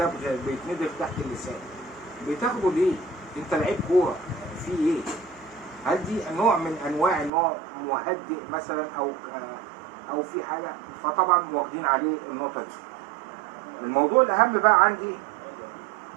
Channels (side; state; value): left; drops out; at 7.3 s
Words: بيتندغ تحت اللسان. بتاخده ليه؟ انت لعيب كوره في ايه؟ هل دي نوع من انواع نوع مهدئ مثلا او في حاجه؟ فطبعا واخدين عليه النقطه دي. الموضوع الاهم بقى عندي